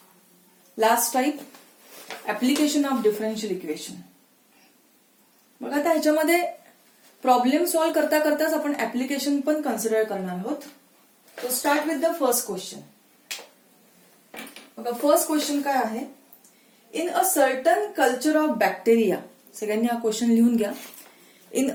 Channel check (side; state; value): both; identical; correlation 1.00